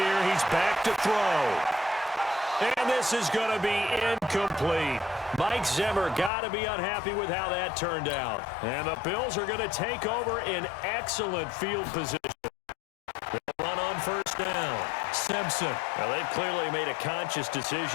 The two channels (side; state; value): right; drops out; at 6.3 s